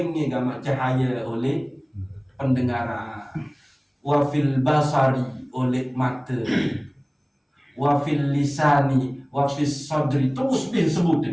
gama cahaya oleh pendengaran. Wafil basari oleh mata, wafil lisani, wafis sadri, terus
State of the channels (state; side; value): identical; both; correlation 1.00